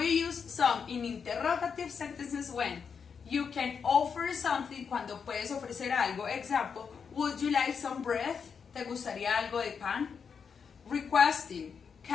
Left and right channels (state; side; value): quieter; right; 6.3 dB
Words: use some in interrogative sentences when you can offer something, cuando puedes ofrecer algo. Example, would you like some bread? ¿Te gustaría algo de pan? Requesting,